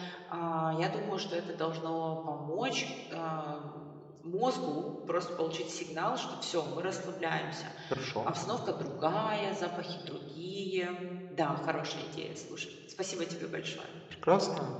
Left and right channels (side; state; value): both; identical; correlation 1.00